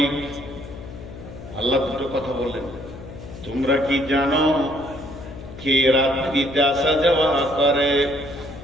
আল্লাহ দুটো কথা বললেন। তোমরা কি জানো কে রাত্রিতে আসা যাওয়া করে?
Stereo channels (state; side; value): noise; left; hum, 14 dB below the sound